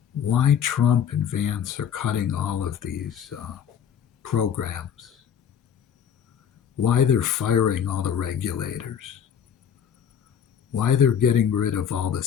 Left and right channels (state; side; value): quieter; right; 8.3 dB